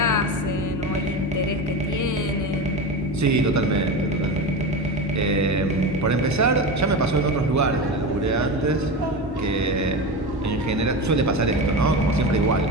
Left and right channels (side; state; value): both; normal; correlation 0.23